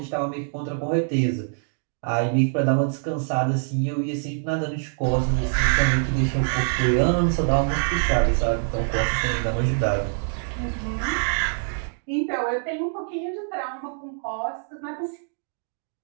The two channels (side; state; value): left; silent; digital silence